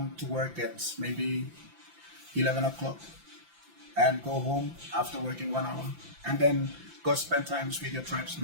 to work at maybe 11 o'clock and go home after working 1 hour, and then go spend time with your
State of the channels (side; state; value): left; late; 5.9 ms